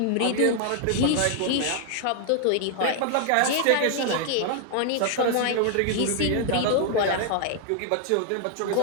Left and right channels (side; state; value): both; different; correlation 0.00